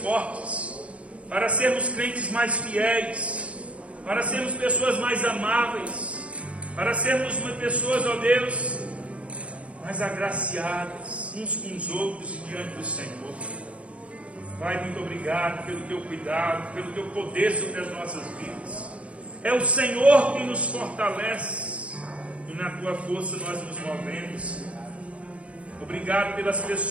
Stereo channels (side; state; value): left; late; 0.063 ms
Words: para sermos crentes mais fiéis, para sermos pessoas mais amáveis, para sermos pessoas, ó Deus, mais agraciadas uns com os outros e diante do Senhor. Pai, muito obrigado pelo teu cuidado, pelo teu poder sobre as nossas vidas. É o Senhor que nos fortalece e na tua força nós nos movemos. Obrigado pelas